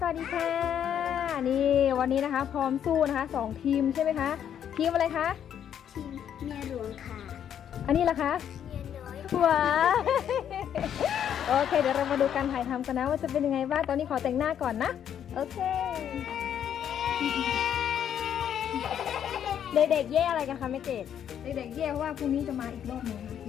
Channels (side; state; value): right; quieter; 9.3 dB